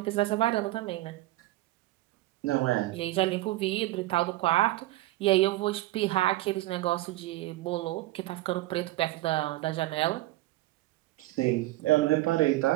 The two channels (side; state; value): left; quieter; 17.8 dB